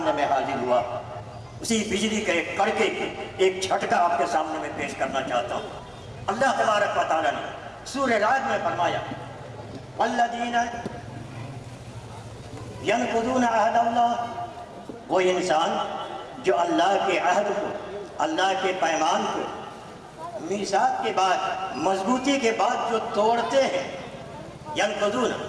میں حاضر ہوا۔ اسی بجلی کا ایک کڑکے ایک جھٹکا آپ کے سامنے میں پیش کرنا چاہتا ہوں۔ اللہ تبارک و تعالیٰ نے سورہ رعد میں فرمایا والذین ینقضون عہد اللہ، وہ انسان جو اللہ کے عہد کو، اللہ کے پیمان کو میثاق کے بعد، مضبوطی کے بعد جو توڑتے ہیں، ینقضون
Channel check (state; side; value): identical; both; correlation 1.00